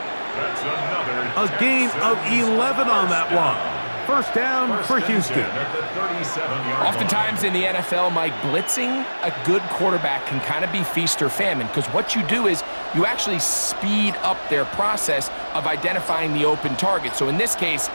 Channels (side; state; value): both; inverted; correlation -1.00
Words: That's another a gain of 11 on that one. First down for Houston. Oftentimes in the NFL, Mike, blitzing a good quarterback can kind of be feast or famine, because what you do is you actually speed up their process of identifying the open target. So in this case,